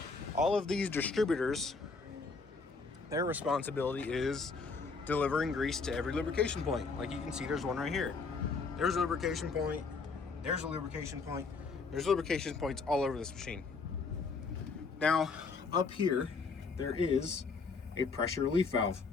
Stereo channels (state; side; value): quieter; right; 4.5 dB